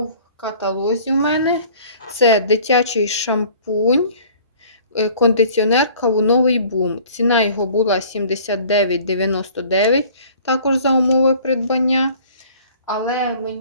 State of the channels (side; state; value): both; inverted; correlation -0.51